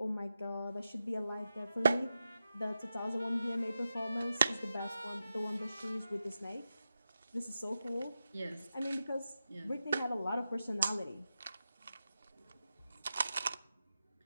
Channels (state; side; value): inverted; both; correlation -0.90